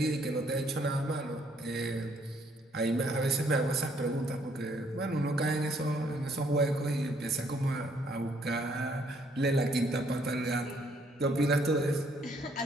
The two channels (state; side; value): normal; both; correlation 0.66